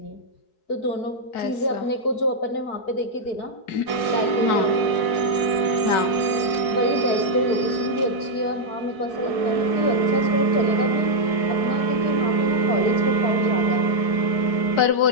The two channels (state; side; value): late; right; 4.7 ms